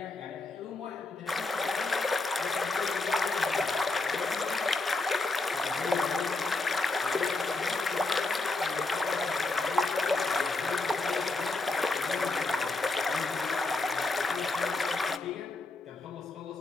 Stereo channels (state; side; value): quieter; right; 3.3 dB